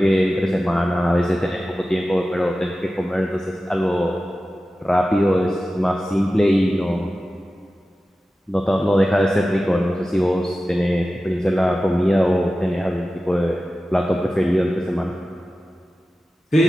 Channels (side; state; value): both; normal; correlation 0.94